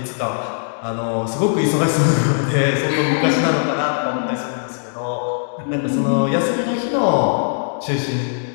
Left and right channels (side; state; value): right; silent; digital silence